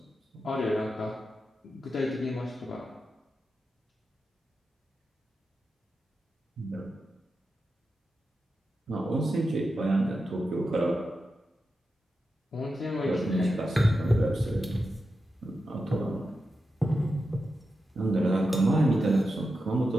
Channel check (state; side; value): normal; both; correlation 0.89